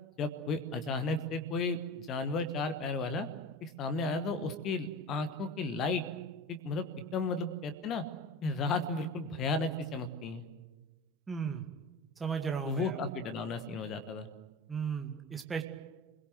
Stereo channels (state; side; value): normal; both; correlation 0.31